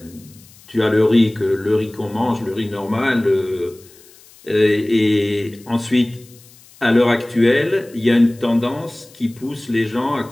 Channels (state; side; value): noise; left; hiss, 25 dB below the sound